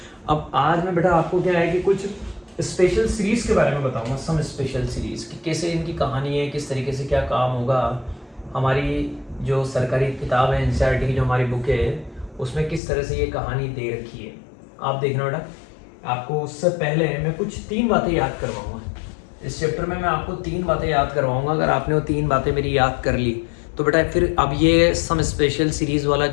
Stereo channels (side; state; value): right; drops out; at 12.8 s